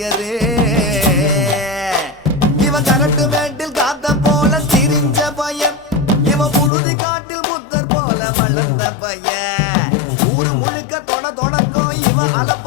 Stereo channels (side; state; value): right; drops out; at 6.7 s